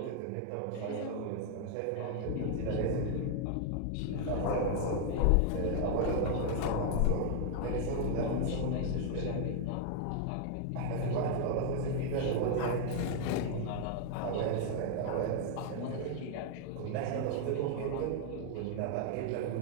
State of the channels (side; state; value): both; different; correlation 0.00